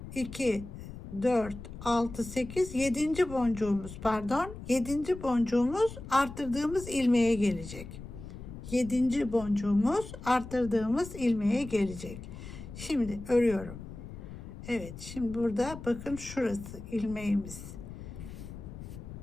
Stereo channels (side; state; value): left; noise; rumble, 12 dB below the sound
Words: 2 4 6 8 7. boncuğumuz, pardon, 7. boncuğumuz artırdığımız ilmeğe gelecek. 7. boncuğumuz artırdığımız ilmeğe gelecek. Şimdi örüyorum. Evet, şimdi burada bakın, şurası ilmeğimiz.